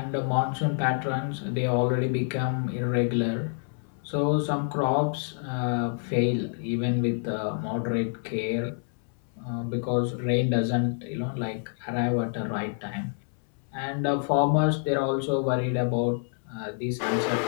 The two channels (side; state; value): right; silent; 60 dB below the other